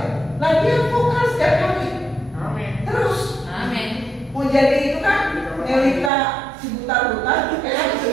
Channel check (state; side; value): drops out; left; at 6.1 s